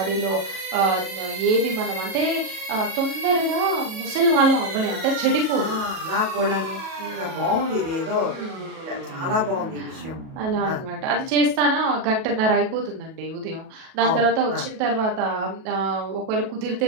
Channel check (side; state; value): left; late; 37 ms